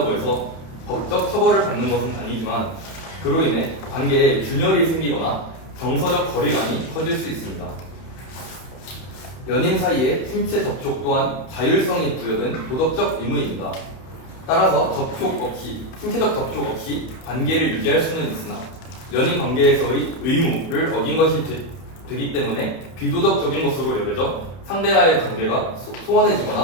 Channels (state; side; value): late; right; 31 ms